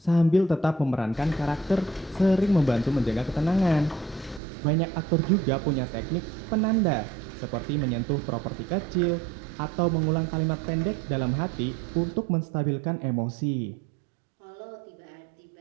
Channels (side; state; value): left; drops out; at 4.4 s